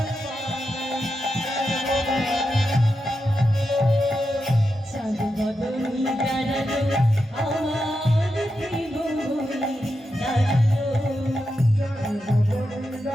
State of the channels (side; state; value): both; normal; correlation 0.87